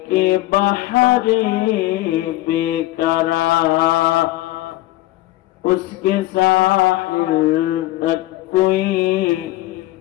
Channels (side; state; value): right; quieter; 17.0 dB